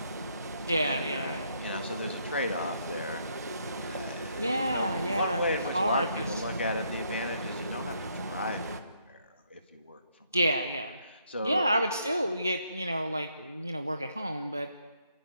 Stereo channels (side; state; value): both; inverted; correlation -0.72